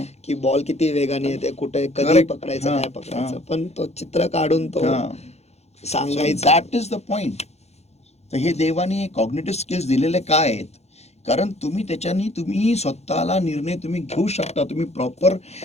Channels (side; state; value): right; late; 0.31 ms